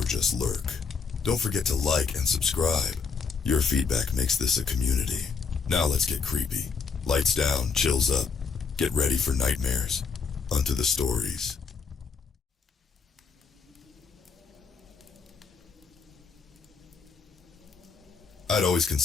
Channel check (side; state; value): right; quieter; 5.3 dB